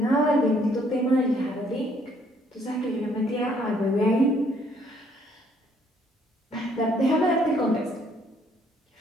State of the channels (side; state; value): both; normal; correlation 0.65